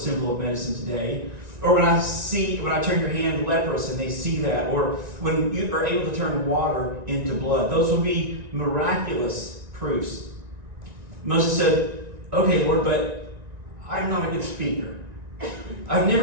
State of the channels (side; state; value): left; late; 1.9 ms